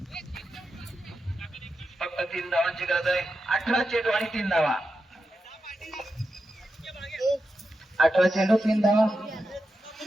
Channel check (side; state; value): both; normal; correlation 0.89